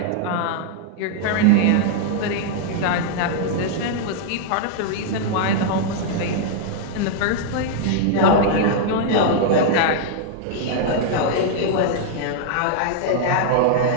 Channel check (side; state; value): both; different; correlation -0.01